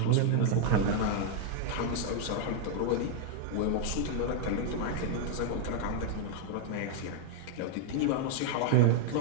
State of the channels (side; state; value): both; different; correlation 0.00